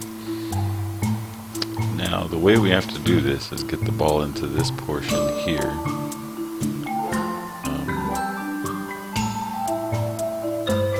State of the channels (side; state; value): both; identical; correlation 1.00